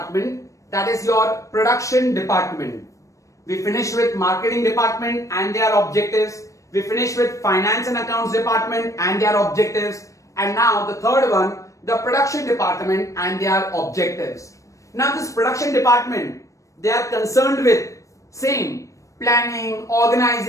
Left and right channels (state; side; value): late; right; 0.16 ms